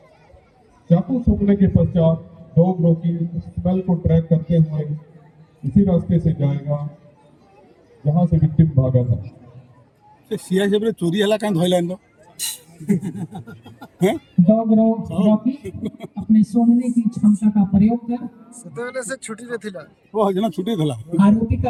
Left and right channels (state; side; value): identical; both; correlation 1.00